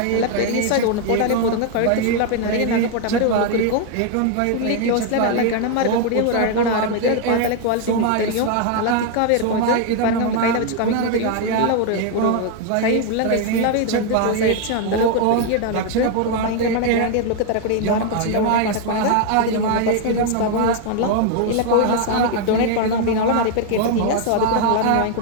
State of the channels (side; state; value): both; different; correlation 0.00